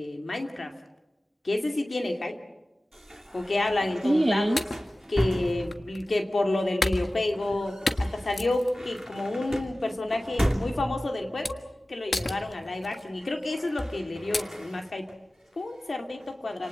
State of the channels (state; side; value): normal; both; correlation 0.97